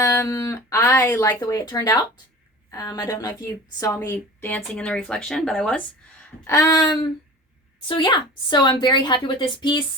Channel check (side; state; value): both; normal; correlation 0.38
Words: like the way it turned out. I don't know if you saw me dancing in the reflection, but I was. So yeah, so I'm very happy with this